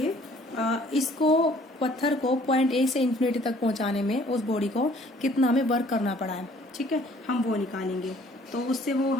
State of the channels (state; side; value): normal; both; correlation 0.57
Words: इसको पत्थर को पॉइंट ए से इन्फिनिटी तक पहुंचाने में उस बॉडी को कितना हमें वर्क करना पड़ा है, ठीक है, हम वो निकालेंगे। तो उससे वो